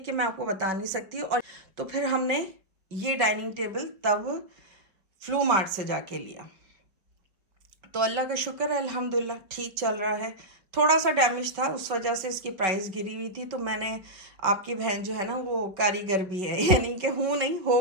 मैं आपको बता नहीं सकती। और तो फिर हमने ये डाइनिंग टेबल तब फ्लू मार्ट से जाके लिया। तो अल्लाह का शुक्र है, अल्हम्दुलिल्लाह ठीक चल रहा है। थोड़ा सा डैमेज था, उस वजह से इसकी प्राइस गिरी हुई थी। तो मैंने, आपकी बहन जो है ना वो कारीगर भी है, यानी कि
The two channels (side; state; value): left; late; 4.8 ms